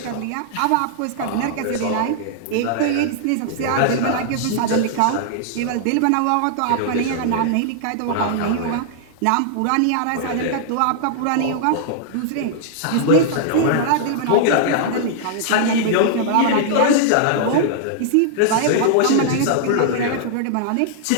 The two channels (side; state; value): both; different; correlation -0.01